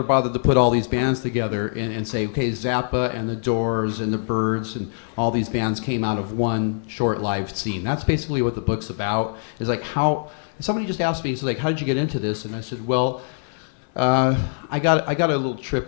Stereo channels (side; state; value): right; silent; digital silence